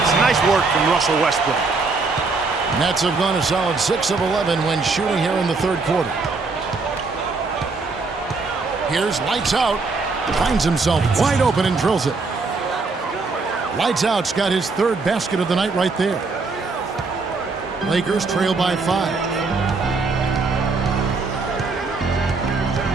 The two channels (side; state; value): left; quieter; 4.1 dB